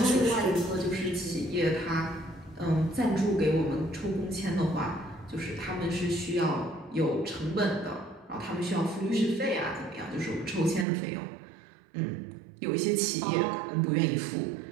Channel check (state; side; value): drops out; left; at 10.9 s